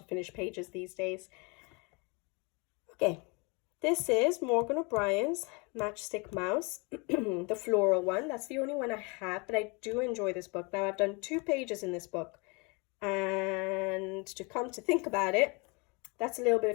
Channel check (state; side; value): quieter; right; 29.9 dB